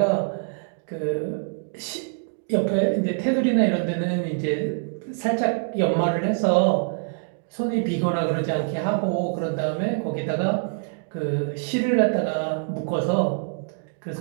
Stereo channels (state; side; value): silent; left; 55 dB below the other